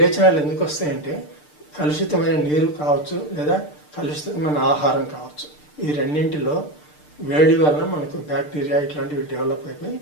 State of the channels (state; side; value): late; right; 6.7 ms